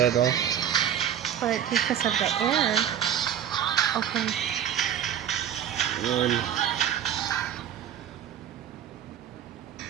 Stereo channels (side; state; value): left; quieter; 9.7 dB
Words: all. But because of the air. Okay.